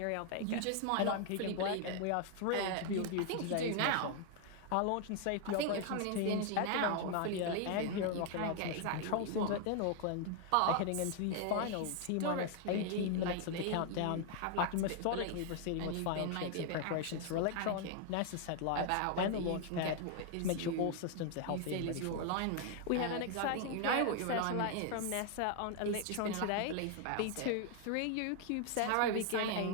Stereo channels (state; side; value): different; both; correlation 0.00